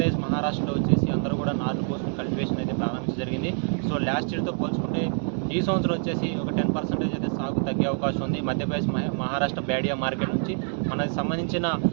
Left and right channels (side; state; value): left; silent; 56 dB below the other